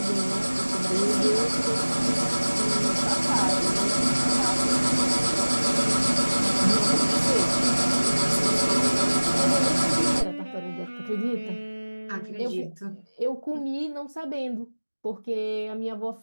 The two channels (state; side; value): inverted; both; correlation -1.00